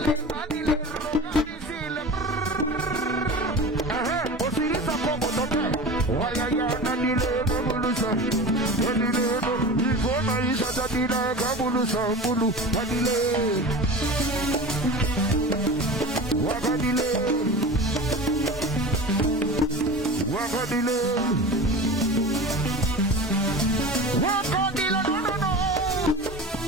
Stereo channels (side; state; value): both; normal; correlation 0.33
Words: Manadile, Roganisile, Osirisa Komo Toke, Wayaya, Nadile, Kamulusa, Nadile, Ivona Isha Tadila, Kamulusa, Mulu, Nadile, Wakadile, Wakadile, Wakadile, no, no, no.